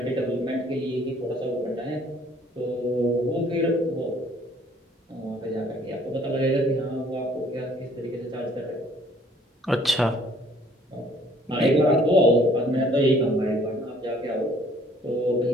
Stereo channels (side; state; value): both; normal; correlation 0.58